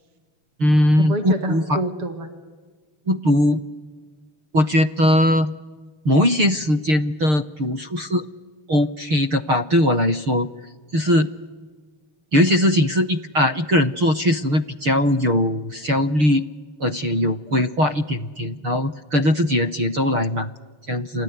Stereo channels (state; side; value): late; left; 6.6 ms